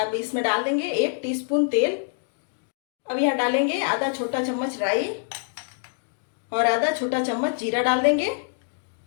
अब इसमें डाल देंगे 1 टीस्पून तेल। अब यहाँ डालेंगे आधा छोटा चम्मच राई और आधा छोटा चम्मच जीरा डाल देंगे।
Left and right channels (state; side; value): silent; right; digital silence